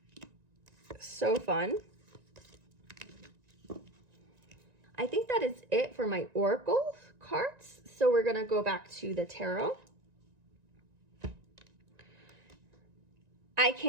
so fun. I think that is it for my Oracle cards. So we're gonna go back to the tarot. I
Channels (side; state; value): left; late; 1.9 ms